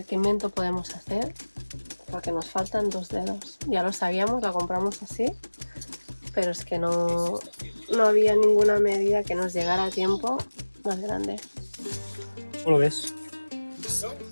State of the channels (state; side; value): inverted; both; correlation -1.00